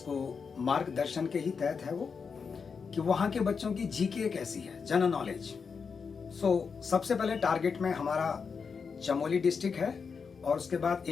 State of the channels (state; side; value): quieter; right; 5.6 dB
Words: मार्गदर्शन के ही तहत है वो कि वहाँ के बच्चों की जीके कैसी है, जनरल नॉलेज। सबसे पहले टारगेट में हमारा चमोली डिस्ट्रिक्ट है और उसके बाद